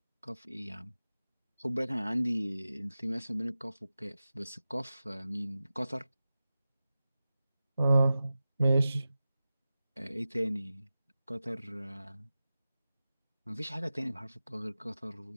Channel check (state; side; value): inverted; both; correlation -0.94